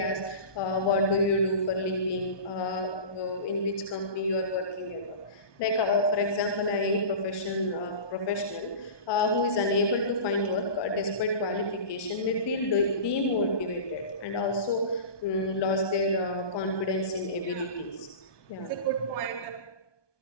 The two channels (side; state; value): right; late; 1.2 ms